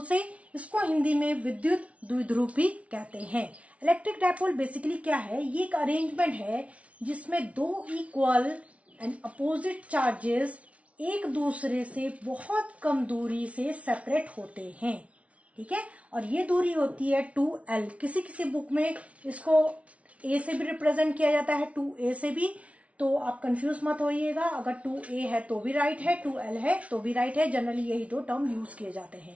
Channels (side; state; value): left; late; 0.064 ms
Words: से। इसको हिंदी में विद्युत द्विध्रुव भी कहते हैं। इलेक्ट्रिक डायपोल बेसिकली क्या है? ये एक अरेंजमेंट है जिसमें दो इक्वल एंड अपोजिट चार्जेस एक दूसरे से बहुत कम दूरी से सेपरेट होते हैं। ठीक है, और ये दूरी होती है 2L। किसी किसी बुक में इसको A से भी रिप्रेजेंट किया जाता है, 2A से भी, तो आप कंफ्यूज मत होइएगा। अगर 2A है तो भी राइट है, 2L है तो भी राइट है। जनरली यही दो टर्म यूज किए जाते